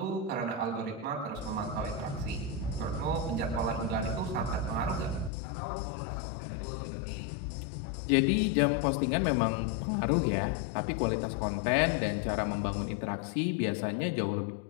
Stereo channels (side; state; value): right; drops out; at 5.3 s